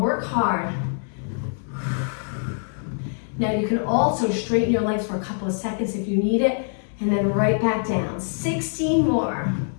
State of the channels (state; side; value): silent; right; 61 dB below the other